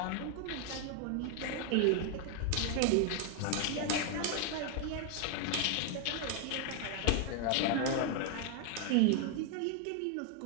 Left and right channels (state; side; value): different; both; correlation 0.00